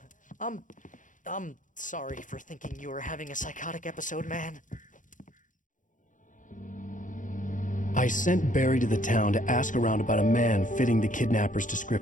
I'm sorry for thinking you were having a psychotic episode, man. I sent Barry to the town to ask around about a man fitting the kidnapper's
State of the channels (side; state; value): right; late; 0.37 ms